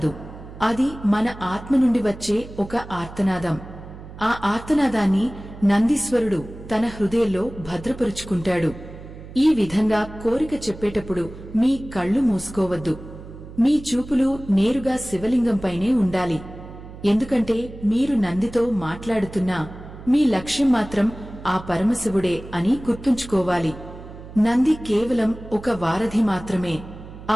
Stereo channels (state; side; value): noise; right; hum, 15 dB below the sound